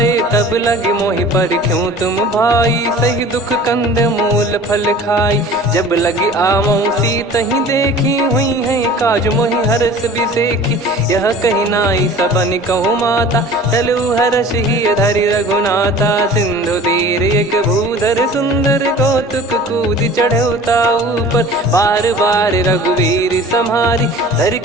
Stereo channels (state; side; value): normal; both; correlation 0.43